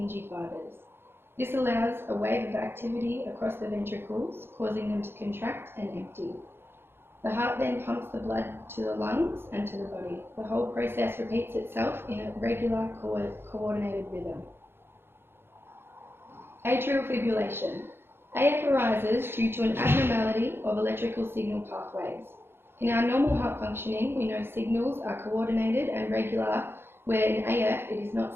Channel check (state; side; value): late; left; 0.11 ms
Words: fibers. This allows a wave of activity across the ventricles, causing them to contract and empty. The heart then pumps the blood to the lungs and to the body. The whole process repeats itself in a regular, coordinated rhythm. Atrial fibrillation. AF arises due to an abnormality of electrical signal pathways. In our normal heart functioning, we know signals are coordinated and regular, where in AF it is